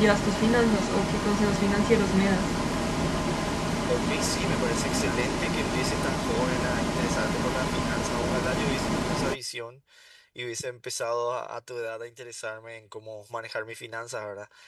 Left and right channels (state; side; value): identical; both; correlation 1.00